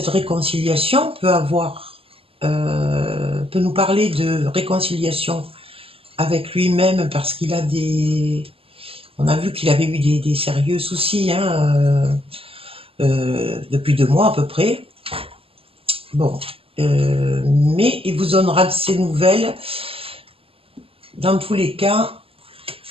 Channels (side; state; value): left; late; 0.27 ms